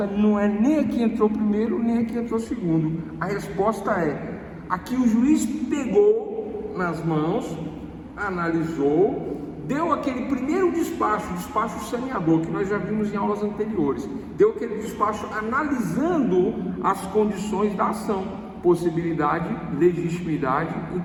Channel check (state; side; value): identical; both; correlation 1.00